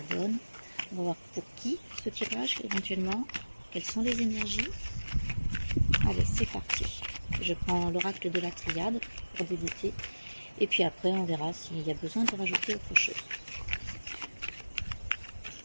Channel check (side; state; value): both; inverted; correlation -1.00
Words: donne, on va voir pour qui ce tirage éventuellement, quelles sont les énergies. Allez, c'est parti. Je prends l'oracle de la triade pour débuter et puis après on verra s'il y a besoin de rajouter autre chose.